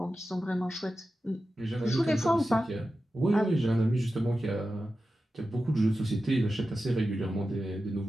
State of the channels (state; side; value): normal; both; correlation 0.92